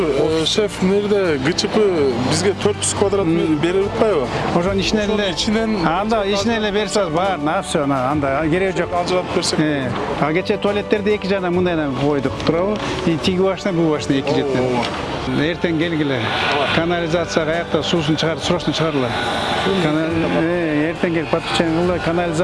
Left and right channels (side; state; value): both; identical; correlation 1.00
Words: шеф нерде ГЧП бизге 400 квадрат метр берип атпайбы? Ошонун ичинен анда ичинен эле берсе баарын все анда кереги жок. Ажыратып берсек. А кечээ туалеттерди эки жагына мындай койдук, туурабы? Тиги башына, бул башына эки жактан. Эртең келгиле. Канализация каякта суусун чыгарып, срочно чыгарыла. Эртең келип подключение кылгыла,